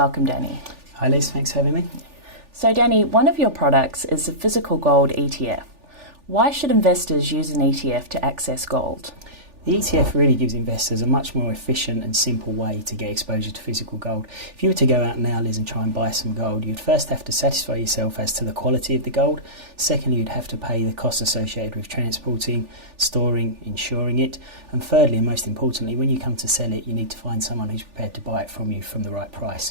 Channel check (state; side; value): late; left; 3.4 ms